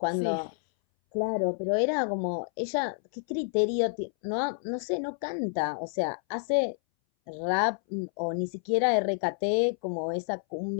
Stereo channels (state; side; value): silent; right; 59 dB below the other